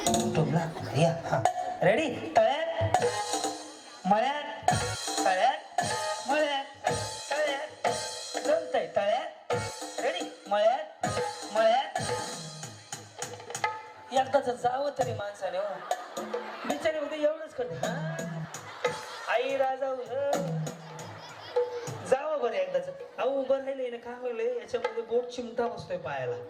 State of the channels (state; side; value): identical; both; correlation 1.00